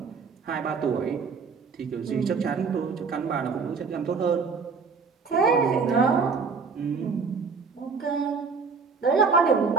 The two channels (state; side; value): quieter; left; 5.2 dB